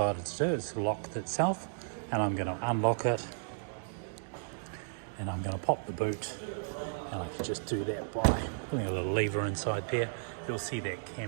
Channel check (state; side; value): silent; left; digital silence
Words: to do, it's locked itself, and I'm going to unlock it and I'm going to pop the boot, and I can just do that by putting a little lever inside there. You'll see that